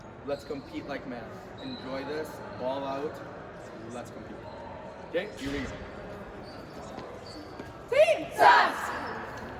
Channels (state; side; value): identical; both; correlation 1.00